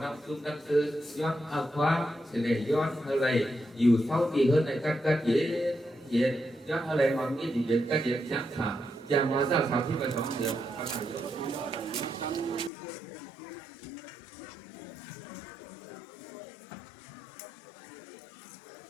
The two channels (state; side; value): drops out; right; at 12.7 s